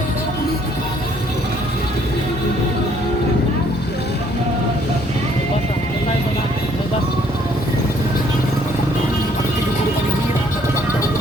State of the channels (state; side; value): normal; both; correlation 0.63